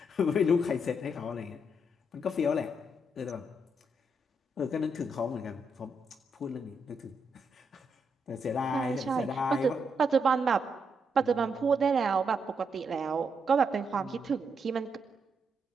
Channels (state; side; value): normal; both; correlation 0.79